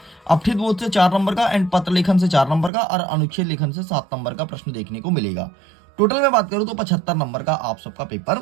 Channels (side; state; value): left; drops out; at 2.7 s